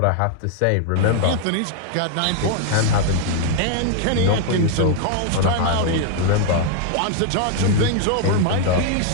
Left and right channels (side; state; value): both; different; correlation 0.00